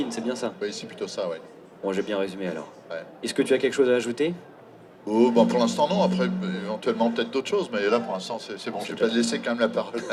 c'est bien ça? Oui, c'est plutôt ça, oui. Bon, j'ai bien résumé alors. Ouais. Est-ce que tu as quelque chose à ajouter? Oh, bon, pour l'instant, non. Après, éventuellement, peut-être d'autres choses. Mais là, pour l'instant, c'est bon. Je vais pas laisser quand même la parole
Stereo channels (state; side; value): identical; both; correlation 1.00